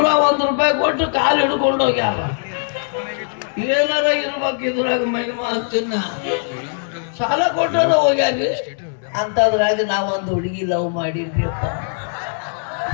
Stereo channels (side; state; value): right; silent; digital silence